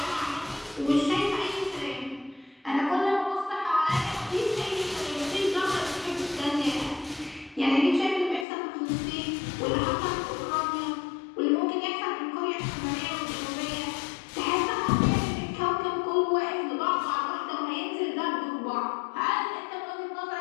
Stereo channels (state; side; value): drops out; right; at 8.5 s